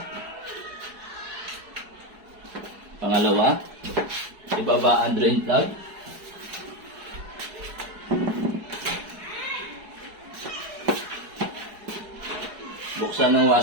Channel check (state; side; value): late; left; 4.7 ms